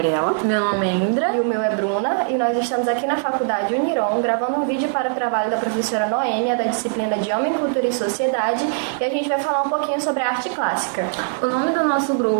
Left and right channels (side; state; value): left; silent; 62 dB below the other